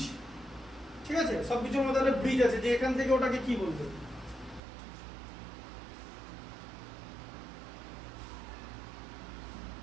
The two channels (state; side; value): drops out; left; at 4.6 s